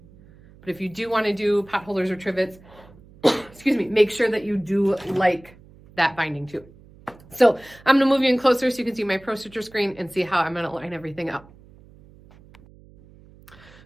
But if you do want to do pot holders or trivets, excuse me, make sure that you do like that binding too. So I'm gonna move you in closer so you can see my ProStitcher screen and see how I'm gonna line everything up.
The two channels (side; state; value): right; noise; hum, 24 dB below the sound